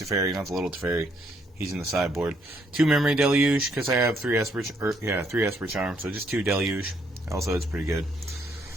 not the little Teferi. He's in the sideboard. 2 Memory Deluge, because I have 3 Esper Charm, so just 2 Deluge. Also, it's pretty good.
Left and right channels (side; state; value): both; normal; correlation 0.70